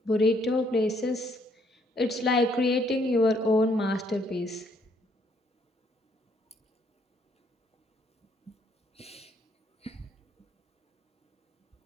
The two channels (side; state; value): both; normal; correlation 0.68